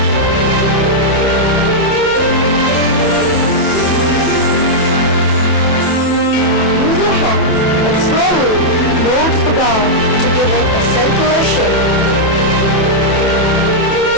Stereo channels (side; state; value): right; late; 28 ms